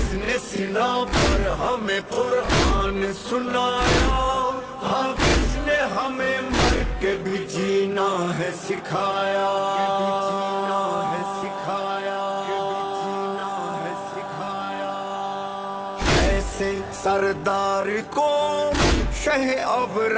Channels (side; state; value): both; identical; correlation 1.00